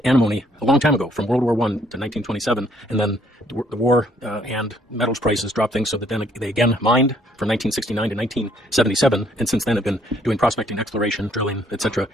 antimony a long time ago, from World War I to 1927, and then the war and metals prices dropped things so that then they again mined from 1969 to 1977, and since then have been doing prospecting, exploration, drilling, etc.,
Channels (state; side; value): normal; both; correlation 0.66